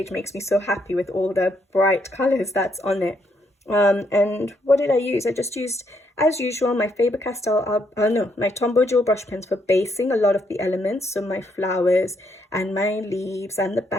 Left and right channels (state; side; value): normal; both; correlation 0.74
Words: makes me so happy with all the bright colors that's on it. And what did I use? I just used, as usual, my Faber-Castell, my Tombow Jewel brush pens for basing a lot of the elements. So my flowers and my leaves and the